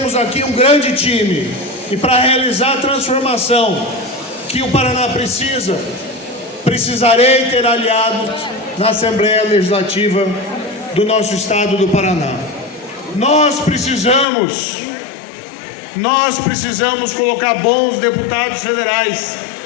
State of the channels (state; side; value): drops out; right; at 14.2 s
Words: aqui um grande time e para realizar a transformação que o Paraná precisa, precisarei ter aliados na Assembleia Legislativa do nosso estado do Paraná. Nós precisamos colocar bons deputados federais